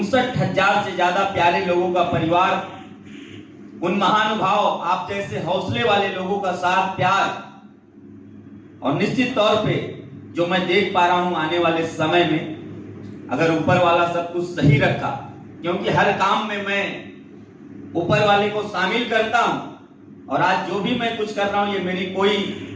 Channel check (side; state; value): both; identical; correlation 1.00